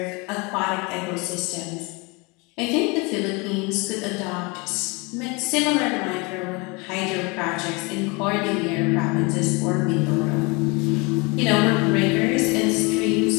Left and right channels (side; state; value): right; quieter; 27.8 dB